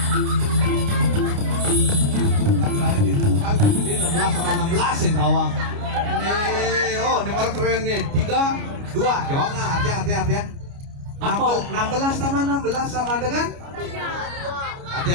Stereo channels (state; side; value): late; left; 29 ms